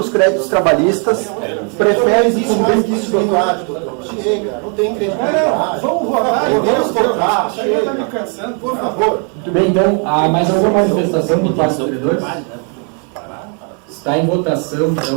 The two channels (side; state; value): left; quieter; 39.4 dB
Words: créditos trabalhistas, prefere que isso chega, não tem credibilidade. Vamos votar. Podemos tocar, Chega, está me cansando, por favor. Muito bem, então, há mais alguma manifestação por parte dos credores? Está em votação,